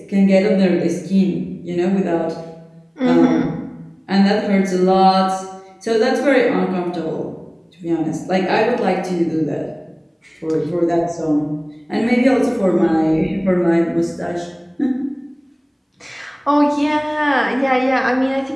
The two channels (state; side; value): identical; both; correlation 1.00